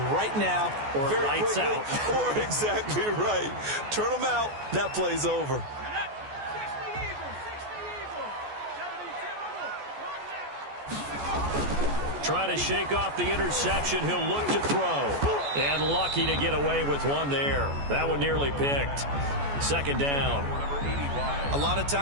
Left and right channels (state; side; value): late; left; 14 ms